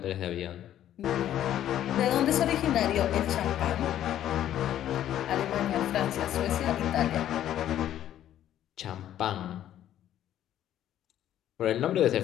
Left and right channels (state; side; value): quieter; right; 11.6 dB